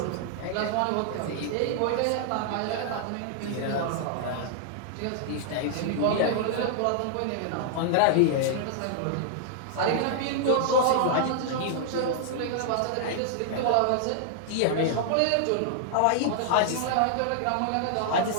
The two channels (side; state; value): both; different; correlation -0.01